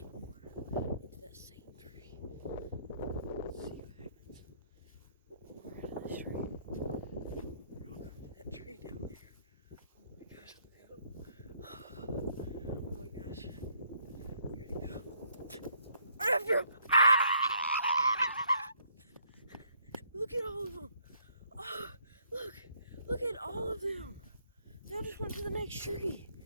more into that same tree. Let's see what happens. More out of this tree. I'll go to that tree down there. Oh my gosh. Oh my gosh. Here we go. Right after him. Look at all of them. Oh, look at all of them. They all just went to the next tree.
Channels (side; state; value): both; inverted; correlation -0.67